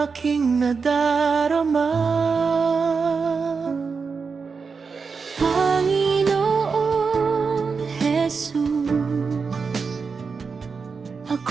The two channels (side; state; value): left; quieter; 5.1 dB